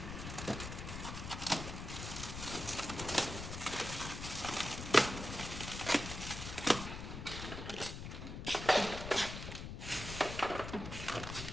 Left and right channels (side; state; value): left; noise; rumble, 7 dB below the sound